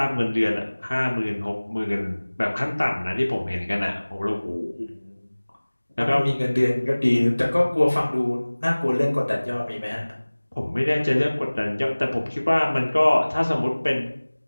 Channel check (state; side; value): inverted; both; correlation -1.00